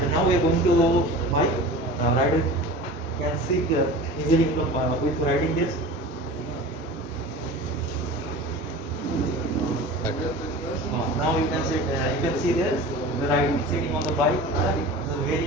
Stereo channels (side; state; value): both; normal; correlation 0.36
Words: now we are going to buy rider can sit easily with riding gears. Now you can see there the rider sitting on the bike, it's a very